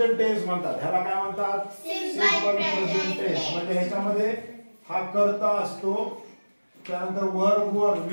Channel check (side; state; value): both; inverted; correlation -1.00